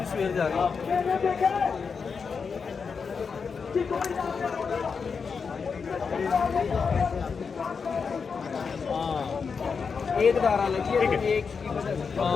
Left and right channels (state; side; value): quieter; right; 5.6 dB